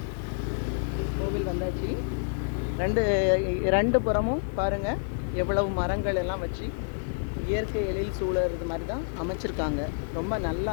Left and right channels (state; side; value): silent; right; digital silence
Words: கோவில் வந்தாச்சு. ரெண்டு புறமும் பாருங்க எவ்வளவு மரங்கள் எல்லாம் வச்சு இயற்கை எழில் சூழறது மாதிரி தான் அமைச்சிருக்காங்க. ரொம்ப நல்லா